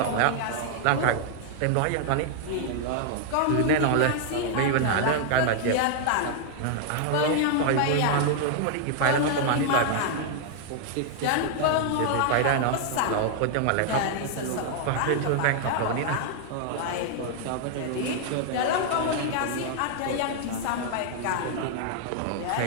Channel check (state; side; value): different; both; correlation 0.00